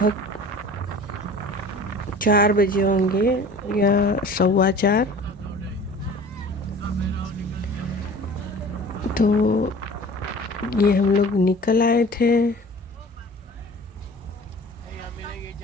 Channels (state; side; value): normal; both; correlation 0.44